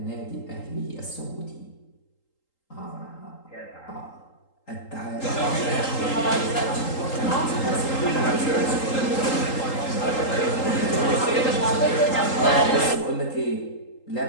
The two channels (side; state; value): right; late; 3.8 ms